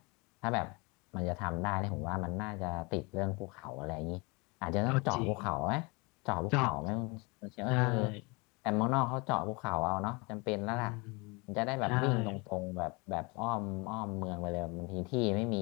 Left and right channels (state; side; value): quieter; right; 28.2 dB